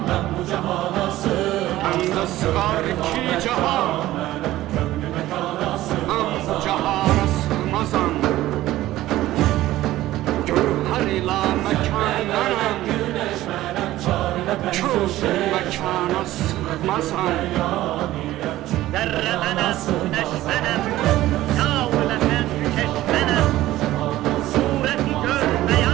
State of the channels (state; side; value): quieter; left; 15.5 dB